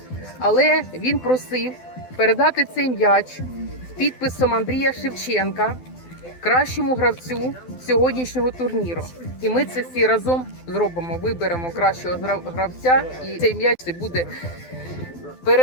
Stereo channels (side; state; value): right; late; 12 ms